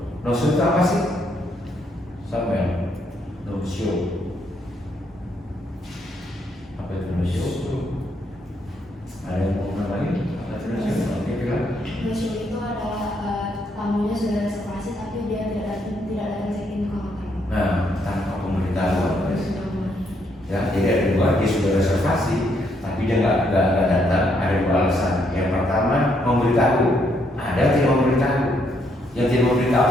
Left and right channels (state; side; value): normal; both; correlation 0.73